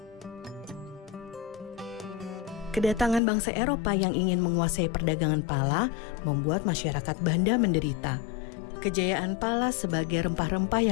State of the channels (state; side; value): drops out; right; at 3.2 s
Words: Kedatangan bangsa Eropa yang ingin menguasai perdagangan pala membuat masyarakat Banda menderita. Kejayaan pala sebagai rempah-rempah